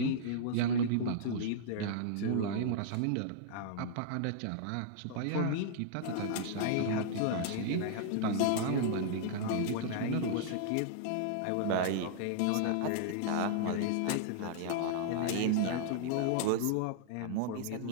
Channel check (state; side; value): different; both; correlation -0.01